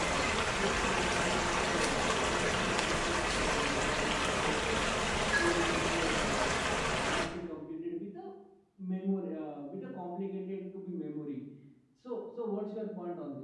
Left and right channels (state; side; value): identical; both; correlation 1.00